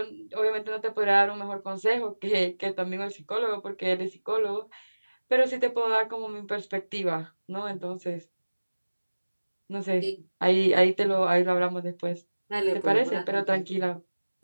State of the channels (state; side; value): inverted; both; correlation -1.00